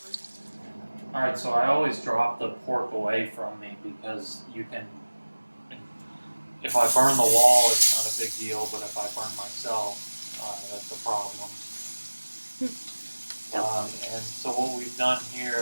Alright, so I always drop the pork away from me because you can, if I burn the wall, it's not a big deal, but if I burn myself, that's a problem. And so what we've done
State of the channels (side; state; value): both; inverted; correlation -1.00